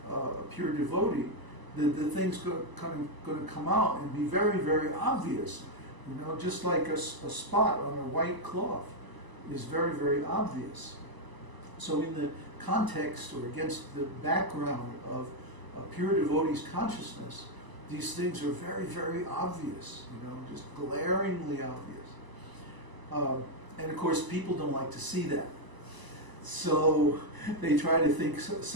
a pure devotee, the thing's going to come out and be very, very obvious. Just like a spot on a white cloth is very, very obvious. So in the context or against the background of a pure devotee's consciousness, these things are very, very obvious, just glaringly obvious. And of course, people don't like to see that. So they try to think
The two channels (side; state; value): left; late; 1.0 ms